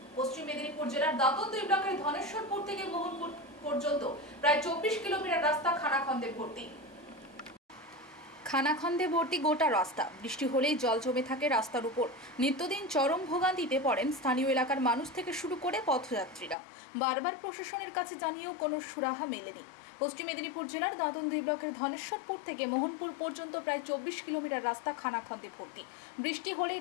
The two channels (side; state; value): right; drops out; at 16.6 s